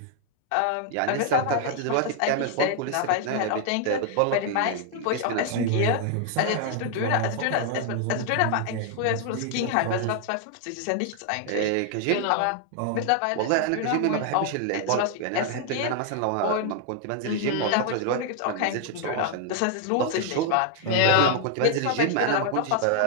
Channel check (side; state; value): both; different; correlation 0.00